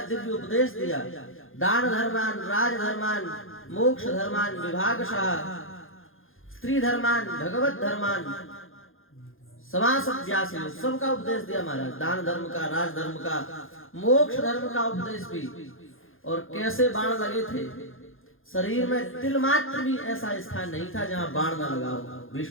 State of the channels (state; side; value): late; right; 0.60 ms